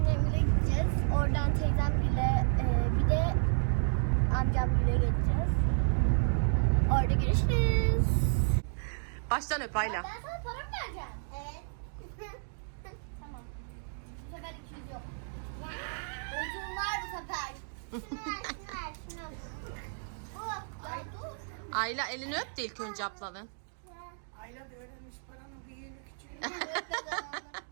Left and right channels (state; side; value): silent; left; digital silence